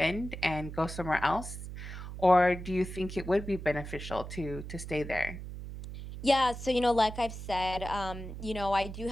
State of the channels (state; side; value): noise; right; hum, 9 dB below the sound